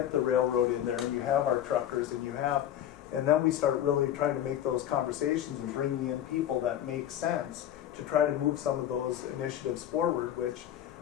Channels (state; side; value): quieter; right; 11.1 dB